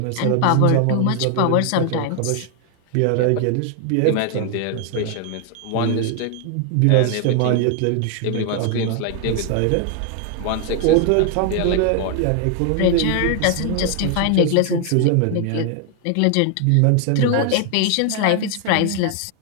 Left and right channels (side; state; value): both; different; correlation 0.00